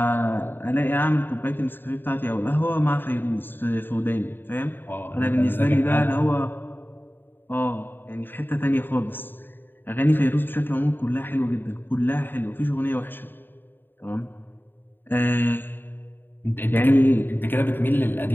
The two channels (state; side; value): late; right; 0.096 ms